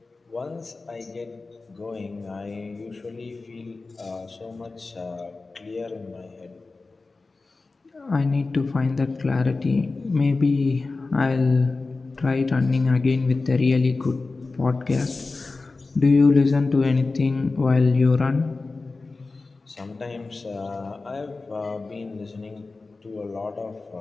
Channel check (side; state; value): right; quieter; 3.7 dB